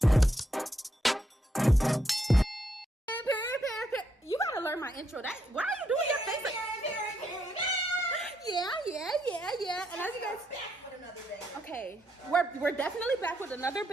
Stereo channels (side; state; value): both; normal; correlation 0.78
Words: Period. You gotta learn my intro. Why are you doing your face like? Yeah. And as you guys, okay, we're definitely back with another